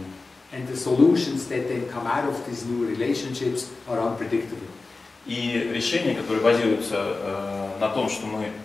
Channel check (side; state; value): right; quieter; 3.7 dB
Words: And the solutions that then come out of these new relationships are unpredictable. И решения, которые базируются на том, что мы